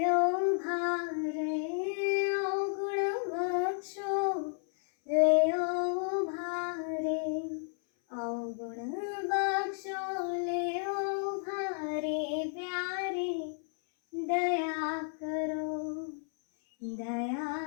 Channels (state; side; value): silent; right; 56 dB below the other